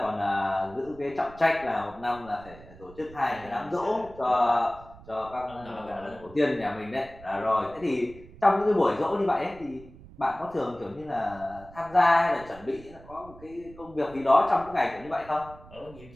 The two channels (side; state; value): right; noise; rumble, 20 dB below the sound